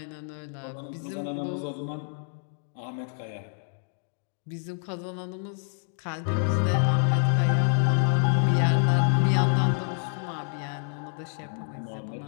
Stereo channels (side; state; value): right; silent; 60 dB below the other